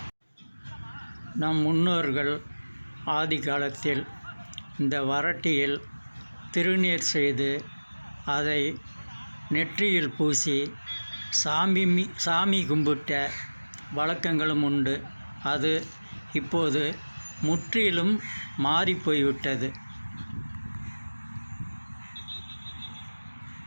நம் முன்னோர்கள் ஆதி காலத்தில் இந்த வரட்டியில் திருநீர் செய்து அதை நெற்றியில் பூசி சாமி கும்பிட்ட வழக்கங்களும் உண்டு. அது இப்போது முற்றிலும் மாறிப்போய்விட்டது.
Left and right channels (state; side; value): inverted; both; correlation -1.00